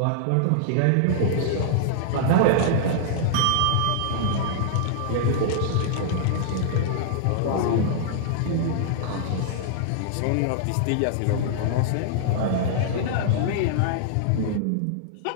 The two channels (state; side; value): different; both; correlation -0.01